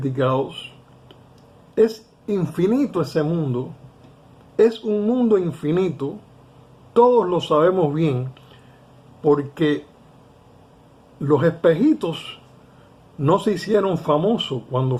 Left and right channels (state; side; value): identical; both; correlation 1.00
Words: Es infinito ese mundo, es un mundo infinito, todos lo sabemos bien, porque los espejitos no se hicieron famosos cuando